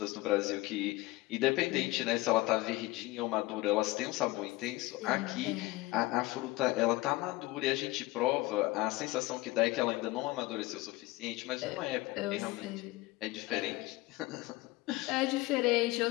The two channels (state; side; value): quieter; right; 20.1 dB